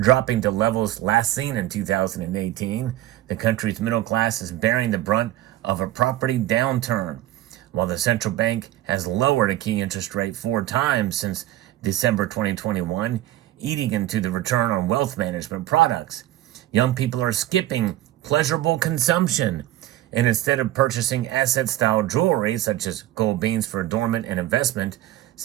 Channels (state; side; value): quieter; left; 14.7 dB